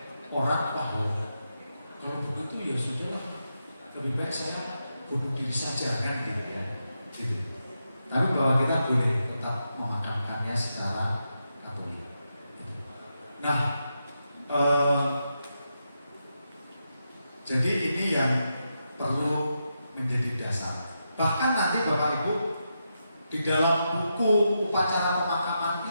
orang bahwa kalau begitu ya sudahlah, lebih baik saya bunuh diri saja, kan gitu ya. Gitu. Tapi bahwa kita boleh tetap memakamkannya secara Katolik. Nah, jadi ini yang perlu menjadi dasar. Bahkan nanti Bapak Ibu di dalam buku upacara pemakaman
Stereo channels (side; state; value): both; inverted; correlation -0.86